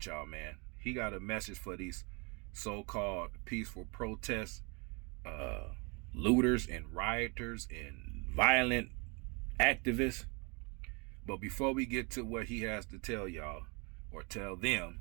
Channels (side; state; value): left; quieter; 31.3 dB